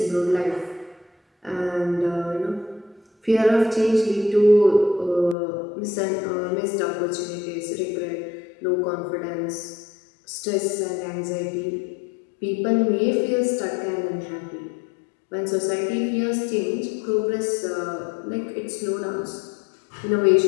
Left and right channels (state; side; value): drops out; right; at 5.4 s